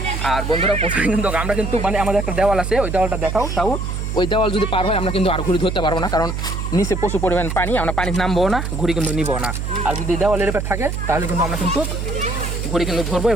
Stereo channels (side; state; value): right; noise; hum, 3 dB below the sound